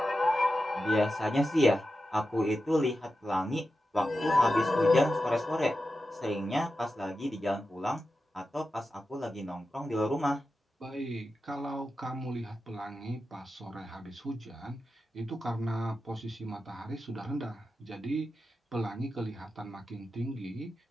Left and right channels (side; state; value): both; normal; correlation 0.91